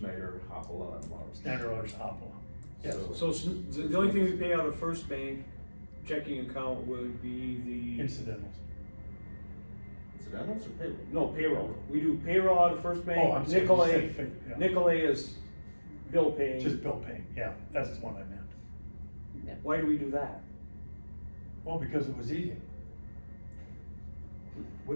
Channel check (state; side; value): inverted; both; correlation -1.00